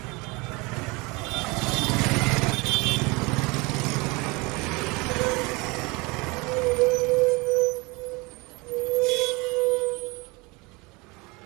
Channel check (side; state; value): left; quieter; 26.1 dB